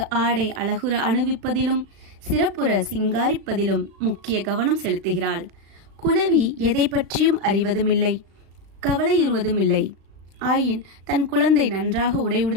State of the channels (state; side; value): late; left; 36 ms